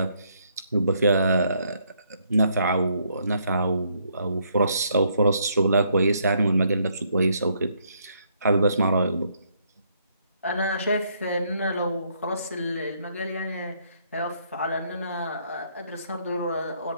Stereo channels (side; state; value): both; inverted; correlation -0.71